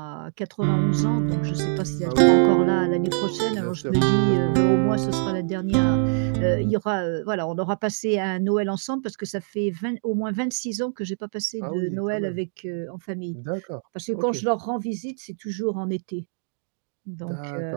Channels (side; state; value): left; silent; 62 dB below the other